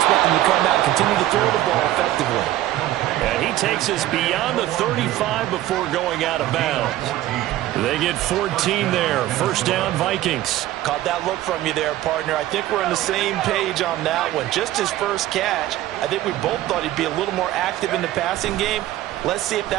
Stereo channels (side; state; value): left; quieter; 14.5 dB